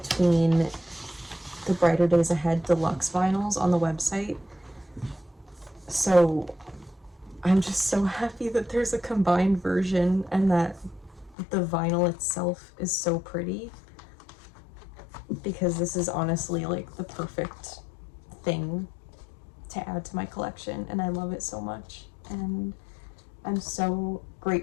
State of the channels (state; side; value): drops out; right; at 11.4 s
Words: the Brighter Days Ahead deluxe vinyls on the website, so I'm just so happy that there's a combined version and that the vinyl itself is so pretty, because this is honestly like the perfect thing to add to my collection, and I love it so much, and I'm so